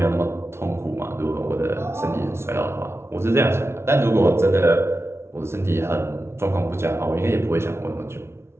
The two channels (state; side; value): late; left; 0.12 ms